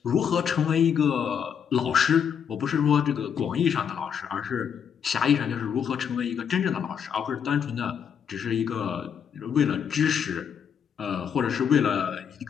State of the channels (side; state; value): right; quieter; 7.7 dB